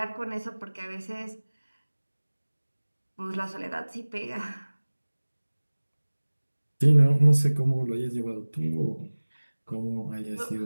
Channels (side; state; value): both; inverted; correlation -1.00